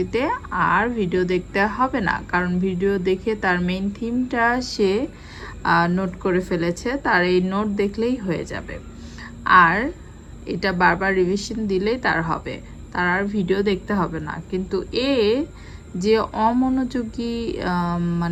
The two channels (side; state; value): both; identical; correlation 1.00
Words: আর ভিডিও দেখতে হবে না, কারণ ভিডিও দেখে তার মেইন থিমটা সে নোট করে ফেলেছে, তার এই নোট দেখলেই হয়ে যাবে। আর এটা বারবার রিভিশন দিলেই তার হবে, তার আর ভিডিও দেখতে হবে না। কিন্তু যে অমনোযোগী,